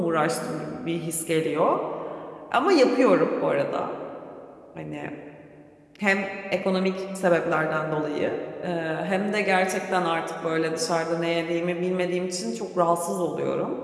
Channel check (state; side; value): identical; both; correlation 1.00